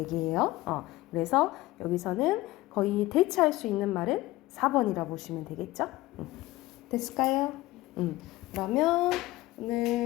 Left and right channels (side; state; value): right; quieter; 18.2 dB